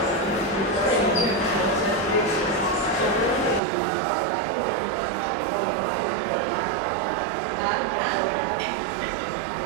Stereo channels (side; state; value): left; drops out; at 3.6 s